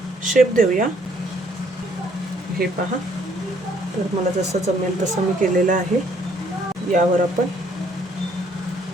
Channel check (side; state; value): both; normal; correlation 0.65